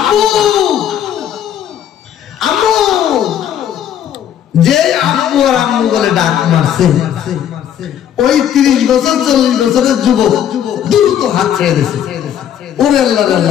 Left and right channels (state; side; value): quieter; right; 9.9 dB